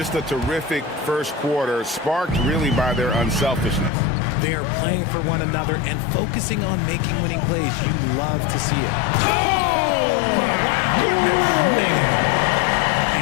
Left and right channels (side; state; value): right; drops out; at 3.9 s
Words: a terrific first quarter, sparked really by their unselfishness. They are playing for one another and focusing on making winning plays. You love to see it. Oh, my goodness, man.